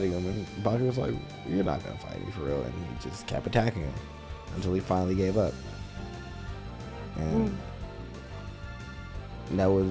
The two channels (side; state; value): both; identical; correlation 1.00